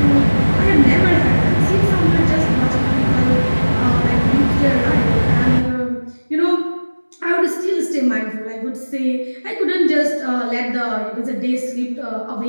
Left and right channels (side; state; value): both; inverted; correlation -1.00